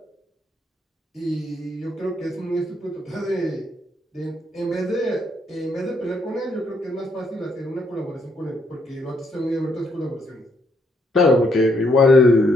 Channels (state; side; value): normal; both; correlation 0.73